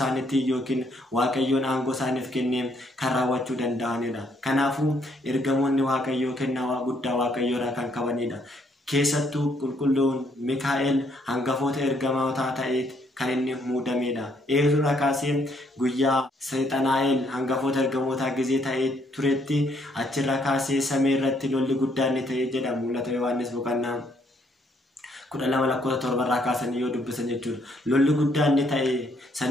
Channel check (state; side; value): normal; both; correlation 0.70